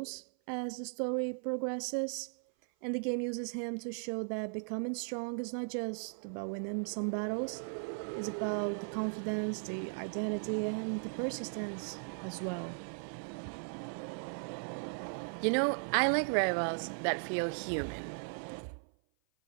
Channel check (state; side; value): silent; left; 53 dB below the other